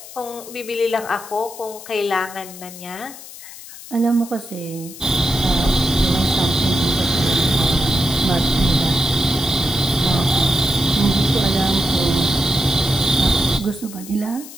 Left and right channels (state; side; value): noise; left; hiss, 15 dB below the sound